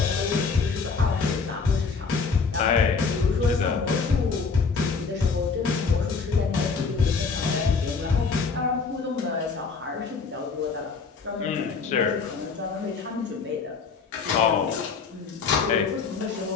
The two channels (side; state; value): right; quieter; 5.0 dB